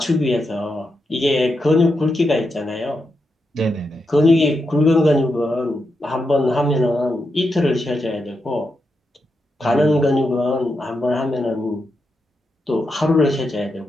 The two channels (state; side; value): normal; both; correlation 0.85